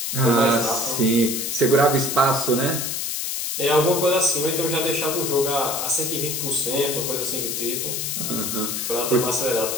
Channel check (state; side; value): noise; left; hiss, 2 dB below the sound